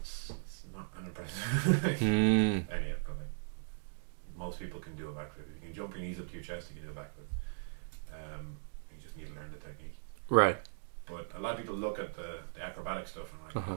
not unimpressive. Anyway, but like most people can do a backflip. If you can jump your knees up to your chest, you can do a backflip. You just need to learn the technique. Right. But a lot of people look at the acrobatic stuff and are like,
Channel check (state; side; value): silent; left; digital silence